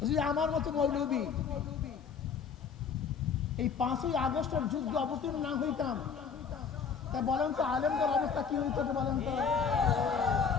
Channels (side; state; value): right; quieter; 6.2 dB